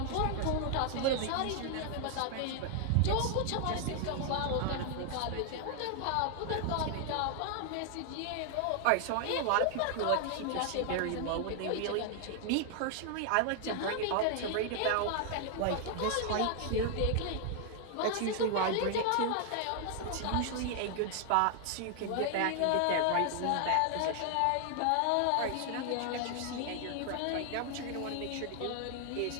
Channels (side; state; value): both; different; correlation 0.00